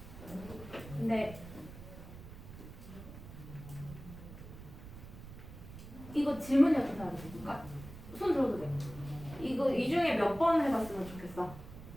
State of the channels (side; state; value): right; noise; rumble, 14 dB below the sound